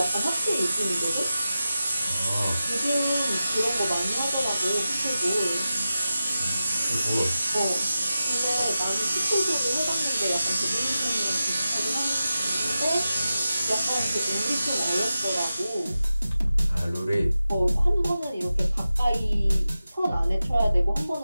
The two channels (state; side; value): inverted; both; correlation -0.92